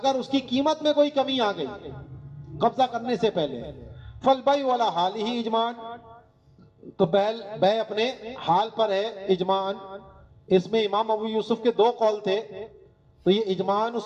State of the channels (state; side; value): identical; both; correlation 1.00